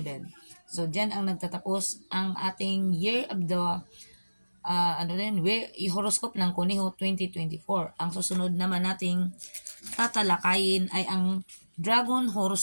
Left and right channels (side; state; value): both; inverted; correlation -1.00